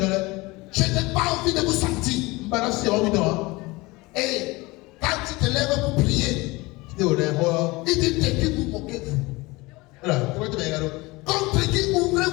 Je n'ai pas envie de vous sentir. Et quand tu te lèves pour prier, il dit de qui vous moquez-vous? Contre qui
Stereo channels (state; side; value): quieter; right; 22.8 dB